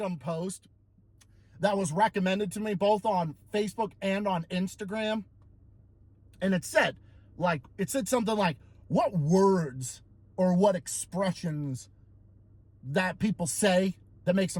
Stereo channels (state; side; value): identical; both; correlation 1.00